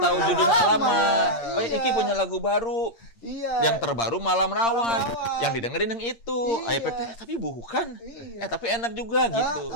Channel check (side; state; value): right; late; 8.7 ms